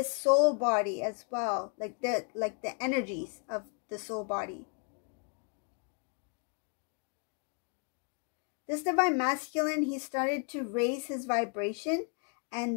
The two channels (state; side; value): quieter; right; 38.1 dB